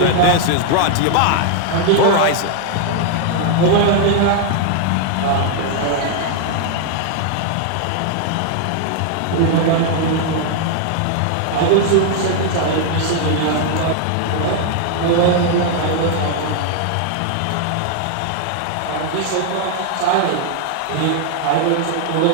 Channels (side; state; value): both; different; correlation 0.00